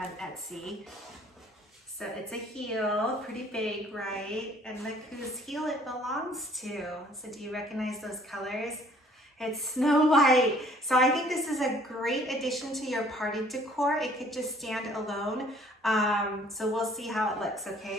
Etsy. So it's a heel, pretty big, right? And look whose heel it belongs to. So do you recognize those colors? It's Snow White. So I think this is a great addition to your party decor. It could just stand alone. So we'll see how it looks,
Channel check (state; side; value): normal; both; correlation 0.57